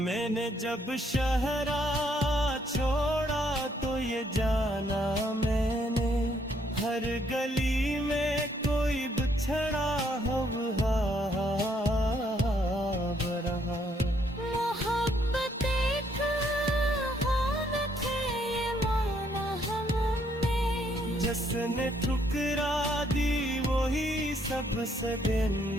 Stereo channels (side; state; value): both; normal; correlation 0.70